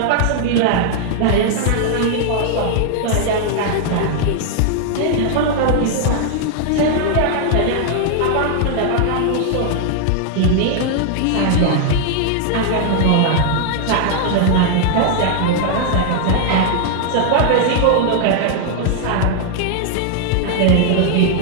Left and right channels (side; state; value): both; different; correlation 0.00